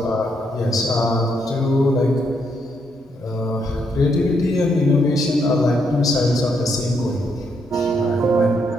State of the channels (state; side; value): normal; both; correlation 0.76